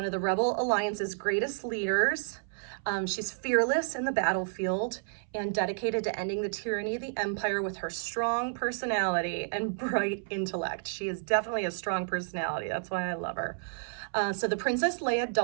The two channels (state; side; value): silent; left; 57 dB below the other